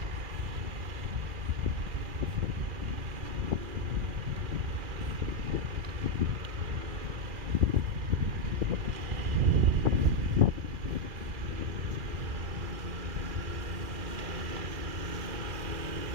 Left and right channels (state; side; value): late; left; 2.4 ms